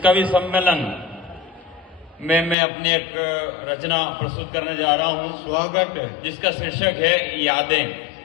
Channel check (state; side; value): drops out; right; at 2.6 s